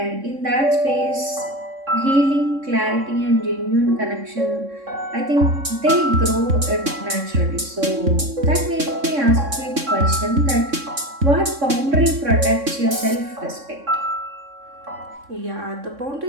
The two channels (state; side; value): late; left; 3.6 ms